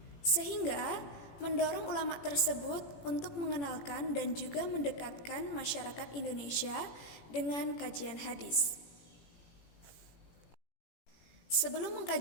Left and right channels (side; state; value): right; late; 18 ms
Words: Sehingga mendorong ulama tersebut untuk mengenalkan dan juga mendekatkan masyarakat Indonesia dengan kajian hadis. Sebelum